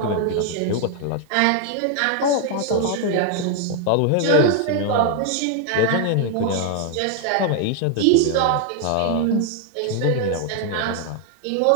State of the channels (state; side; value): different; both; correlation 0.00